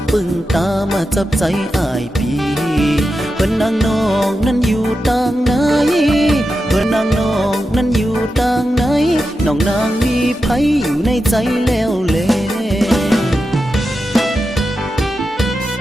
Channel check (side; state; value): both; normal; correlation 0.90